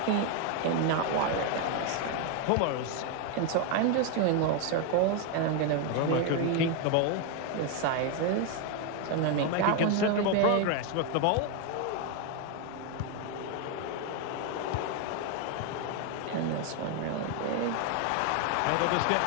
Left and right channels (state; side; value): different; both; correlation 0.01